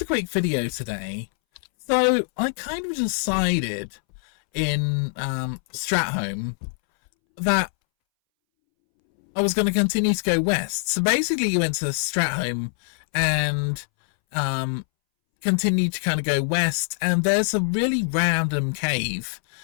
a quick video today. So I kind of decided in Strat that I was going to continue to go west. So basically you went to Strat and continued to kind of go west, and there's a really random cave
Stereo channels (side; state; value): right; silent; 63 dB below the other